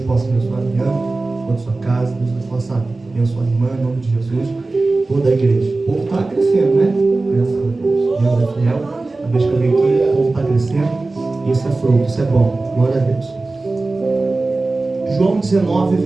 possa abençoar a minha, toda a sua casa, Deus possa abençoar a irmã, em nome de Jesus, toda a igreja. O povo está crescendo, né? Graças a Deus. Deus é fiel. A vez que eu venho aqui, o povo está crescendo. Isso é fruto, isso é bom. Glória a Deus. João 19,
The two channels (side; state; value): left; quieter; 3.3 dB